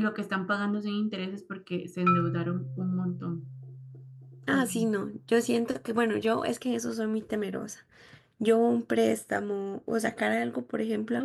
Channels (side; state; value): both; identical; correlation 1.00